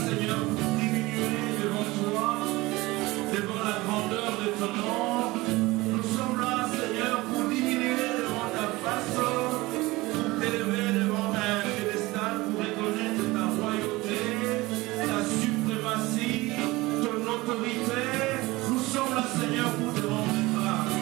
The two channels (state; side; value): quieter; left; 20.7 dB